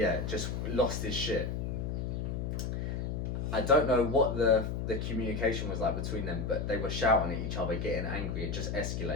just lost his shit. I don't know what the communication was like between them, but they were shouting at each other, getting angry. It just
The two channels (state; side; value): noise; left; hum, 2 dB below the sound